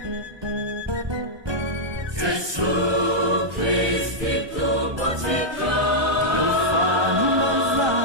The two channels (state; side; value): late; left; 1.2 ms